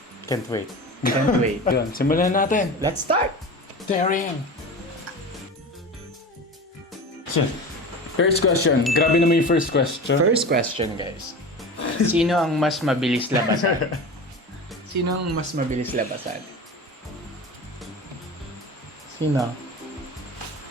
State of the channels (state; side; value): normal; both; correlation 0.31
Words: Can't wait. Can't wait. Yun, simulan natin. Let's start! Daring! So, first question. Grabe naman yung first question. First question, guys. Sino ang mas mabilis labasan? Sino ang mas mabilis labasan? Sino?